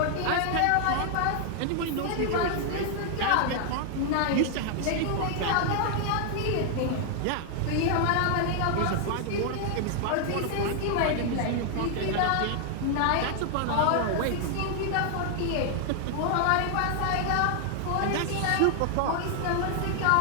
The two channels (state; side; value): different; both; correlation 0.00